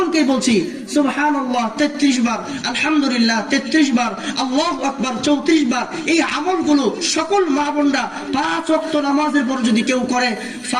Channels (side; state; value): both; identical; correlation 1.00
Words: বলছি সুবহানাল্লাহ 33 বার, আলহামদুলিল্লাহ 33 বার, আল্লাহু আকবার 34 বার। এই আমলগুলো সকল মা বোনরা 5 ওয়াক্ত নামাজের পর যদি কেউ করে,